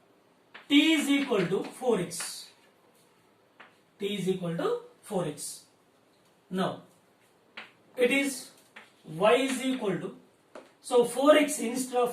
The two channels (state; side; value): identical; both; correlation 1.00